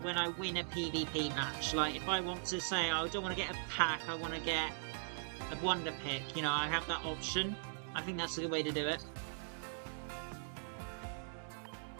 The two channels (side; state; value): left; silent; digital silence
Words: when I win a PvP match. Like if I want to say, oh, I don't want to get a pack, I want to get a Wonder Pick. You know, I have that option. I think that's the way to do it.